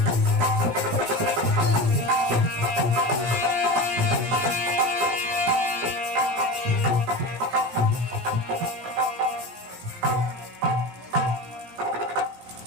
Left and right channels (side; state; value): left; late; 17 ms